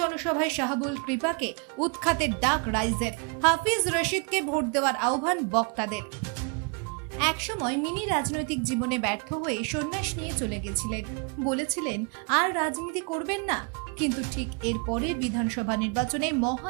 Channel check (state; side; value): quieter; left; 35.5 dB